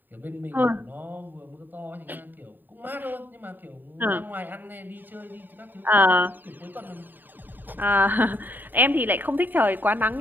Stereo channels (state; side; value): late; left; 0.090 ms